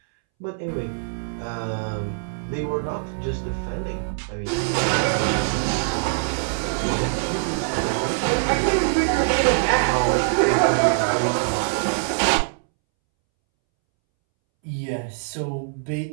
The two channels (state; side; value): silent; left; 63 dB below the other